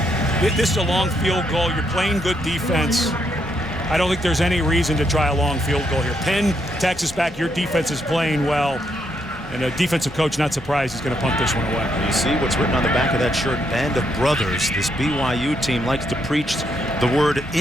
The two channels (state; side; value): normal; both; correlation 0.77